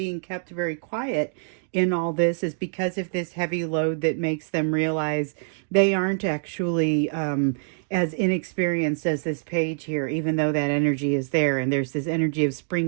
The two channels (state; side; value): silent; left; digital silence